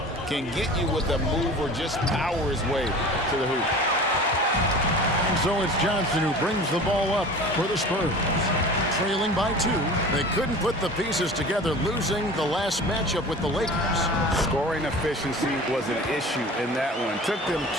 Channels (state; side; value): normal; both; correlation 0.39